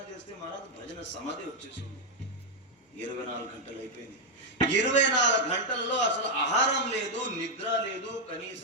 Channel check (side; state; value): both; normal; correlation 0.00